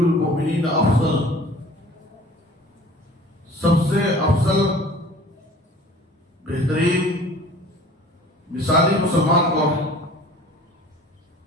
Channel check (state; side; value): normal; both; correlation 0.47